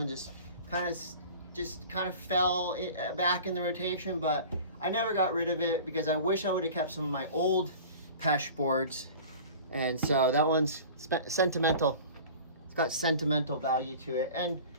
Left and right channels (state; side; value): inverted; both; correlation -0.40